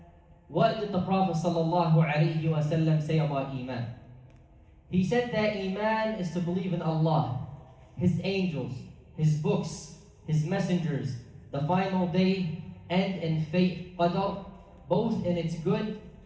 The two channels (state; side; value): identical; both; correlation 1.00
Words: what did the Prophet sallallahu alayhi wasallam say about Iman? He said that Iman is to believe in Allah, His angels, His books, His messengers, the final day, and in fate, qadar, both in its good